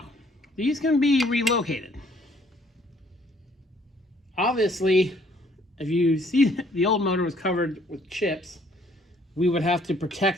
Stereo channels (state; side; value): normal; both; correlation 0.62